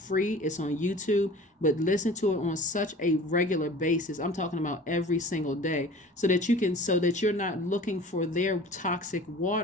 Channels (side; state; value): both; normal; correlation 0.43